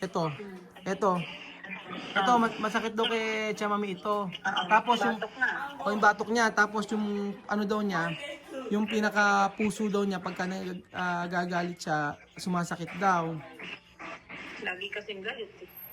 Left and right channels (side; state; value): both; identical; correlation 1.00